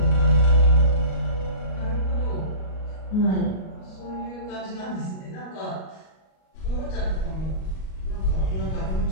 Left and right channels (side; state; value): right; late; 38 ms